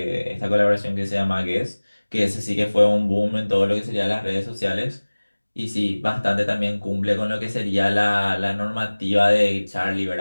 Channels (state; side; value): inverted; both; correlation -1.00